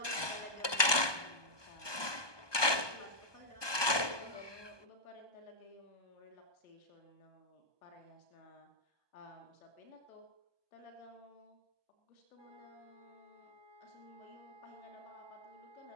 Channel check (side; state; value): right; late; 1.2 ms